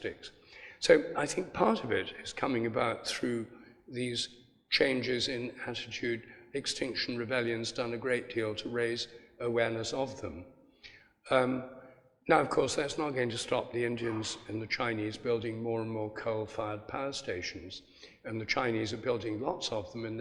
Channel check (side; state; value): both; identical; correlation 1.00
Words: So I think part of it is coming about through these changes in attitude. Extinction Rebellion's done a great deal to raise awareness of them. Now, of course, that's not going to stop the Indians and the Chinese building more and more coal-fired power stations, and the Chinese are building lots of them in